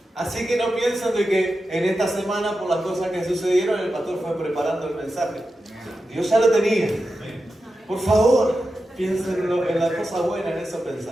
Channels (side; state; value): both; normal; correlation 0.91